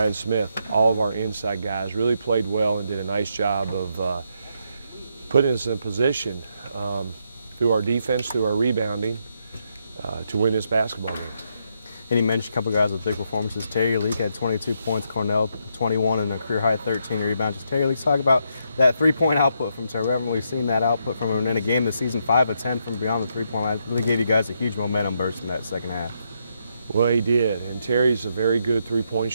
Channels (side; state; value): both; inverted; correlation -0.78